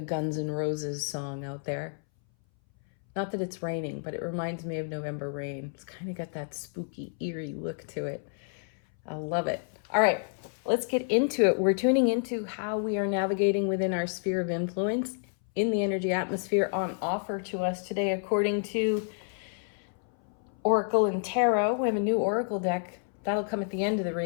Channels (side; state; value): right; silent; 58 dB below the other